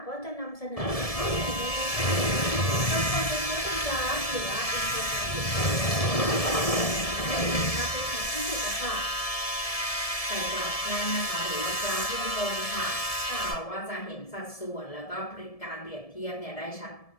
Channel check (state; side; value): late; right; 1.7 ms